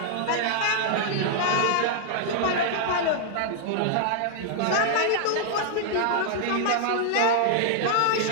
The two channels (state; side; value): different; both; correlation -0.01